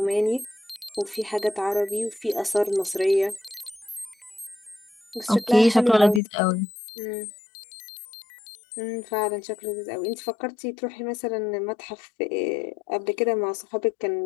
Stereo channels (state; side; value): drops out; right; at 6.2 s